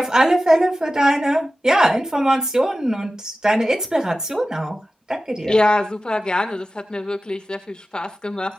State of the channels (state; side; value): normal; both; correlation 0.94